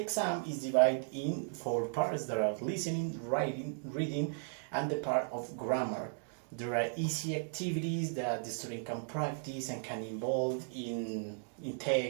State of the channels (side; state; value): left; silent; digital silence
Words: exam is divided in 4 parts. There are listening, writing, reading, and the part of grammar. There are easy activities that the student can practice and can involve in